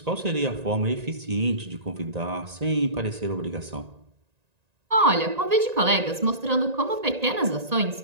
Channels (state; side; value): late; left; 1.9 ms